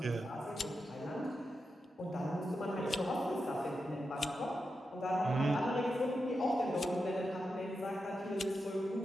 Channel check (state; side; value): normal; both; correlation 0.88